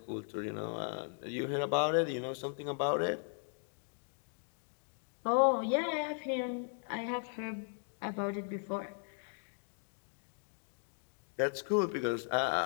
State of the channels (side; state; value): right; silent; 53 dB below the other